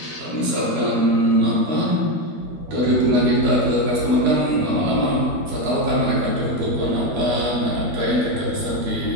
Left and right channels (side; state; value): left; late; 12 ms